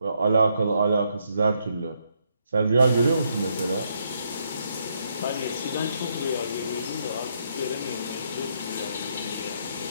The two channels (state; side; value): inverted; both; correlation -0.76